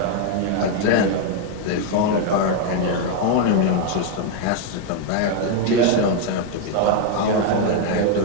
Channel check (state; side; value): different; both; correlation 0.01